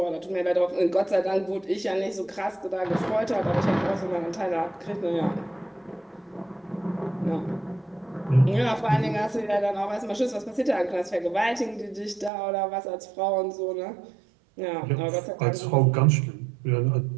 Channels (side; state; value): left; drops out; at 12.3 s